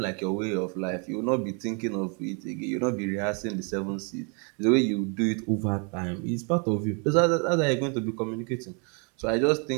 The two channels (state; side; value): quieter; left; 36.3 dB